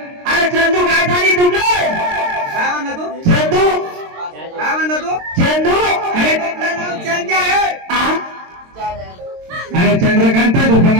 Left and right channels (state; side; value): late; left; 22 ms